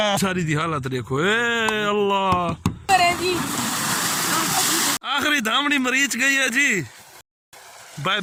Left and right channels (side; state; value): both; identical; correlation 1.00